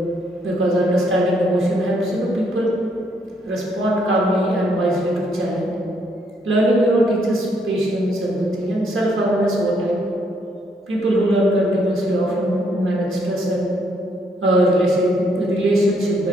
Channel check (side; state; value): both; normal; correlation 0.71